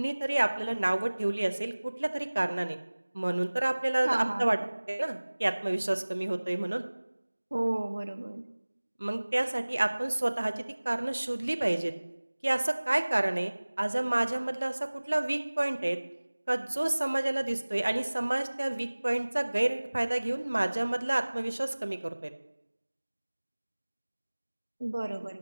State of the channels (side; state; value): both; inverted; correlation -1.00